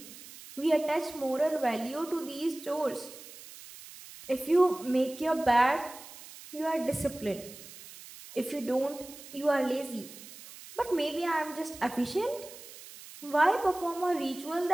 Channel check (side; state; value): right; noise; hiss, 16 dB below the sound